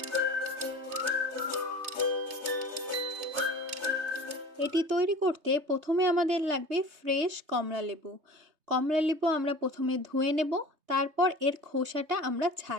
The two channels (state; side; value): late; left; 3.2 ms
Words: এটি তৈরি করতে প্রথমে আমাদের লাগবে ফ্রেশ কমলা লেবু। কমলা লেবু আমরা প্রথমে ধুয়ে নেব, তারপর এর খোসাটা আমরা